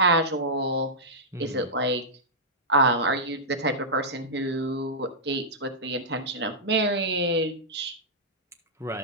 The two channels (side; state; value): both; normal; correlation -0.11